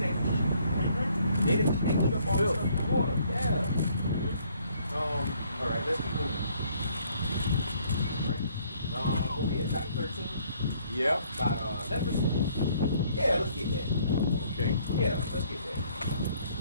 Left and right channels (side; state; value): both; inverted; correlation -0.64